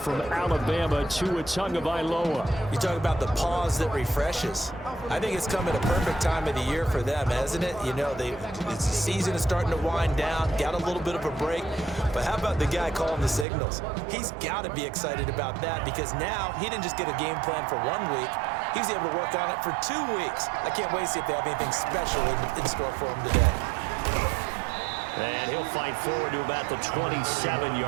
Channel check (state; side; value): drops out; left; at 13.5 s